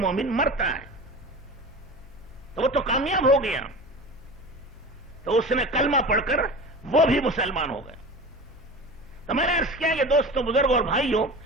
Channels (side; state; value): left; noise; hum, 21 dB below the sound